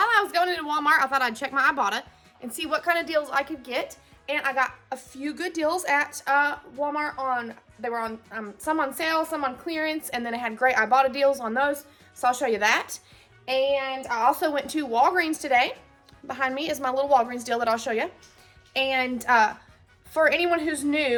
I was going into Walmart, I thought I'd check my Ibotta and see what kind of deals I could get. And I got a few good deals at Walmart. They were on some on sale, some on clearance, and then it had great Ibotta deals on those. So I'll show you that. And I also went to Walgreens today. Behind me is my little Walgreens deal that I'll show you. And for anyone who's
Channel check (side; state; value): both; identical; correlation 1.00